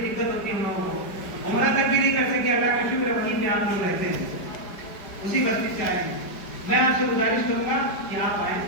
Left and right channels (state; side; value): late; right; 5.0 ms